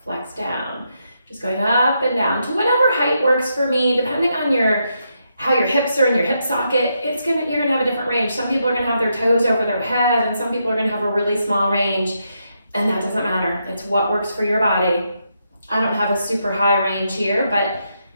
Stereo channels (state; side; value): inverted; both; correlation -0.81